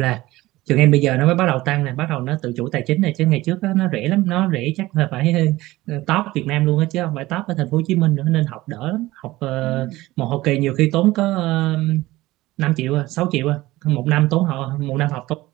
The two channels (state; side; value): quieter; left; 18.2 dB